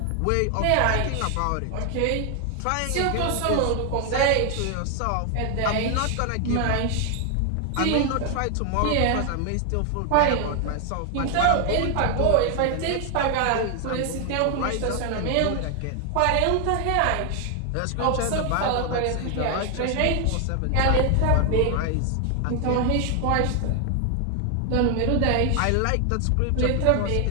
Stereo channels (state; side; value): different; both; correlation 0.00